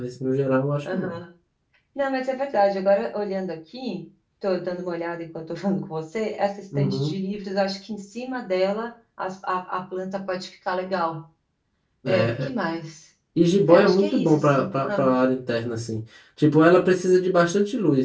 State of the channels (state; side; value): identical; both; correlation 1.00